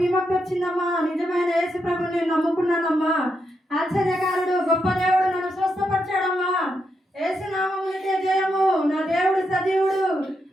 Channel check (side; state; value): both; normal; correlation 0.82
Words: విముక్తి వచ్చిందమ్మా. నిజమైన యేసు ప్రభుని నేను నమ్ముకున్నానమ్మా. ఆశ్చర్యకారుడు గొప్ప దేవుడు నన్ను స్వస్థపరిచాడమ్మా. యేసు నామమునకే జయము. నా దేవుడు సజీవుడు,